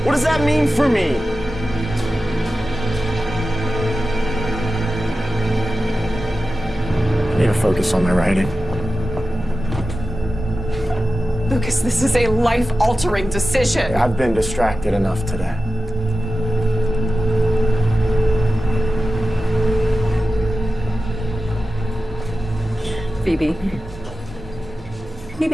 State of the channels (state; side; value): normal; both; correlation 0.93